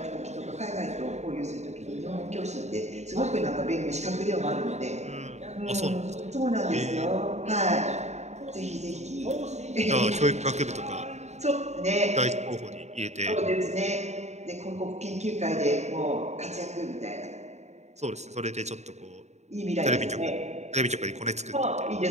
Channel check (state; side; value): late; left; 0.33 ms